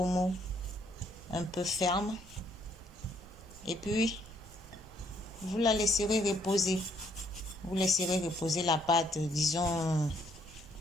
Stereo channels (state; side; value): normal; both; correlation 0.68